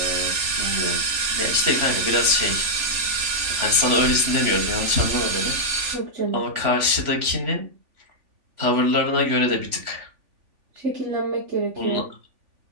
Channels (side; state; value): left; late; 3.5 ms